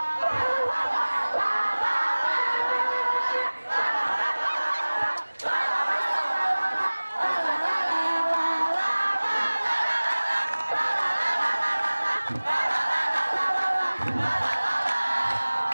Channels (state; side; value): inverted; both; correlation -1.00